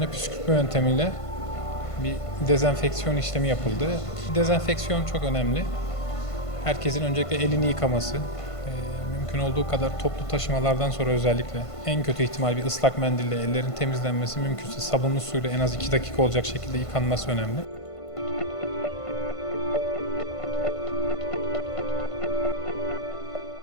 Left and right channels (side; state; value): right; late; 1.5 ms